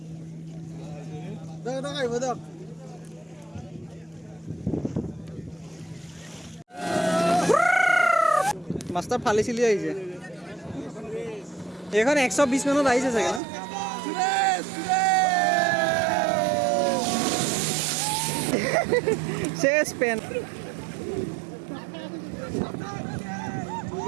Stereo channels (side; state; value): left; drops out; at 13.4 s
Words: আহিব দিয়ক মাষ্টাৰ ফালি চিলি আহিছে এইখন 120 মানত আহিছে চাগে ন শেষ পেন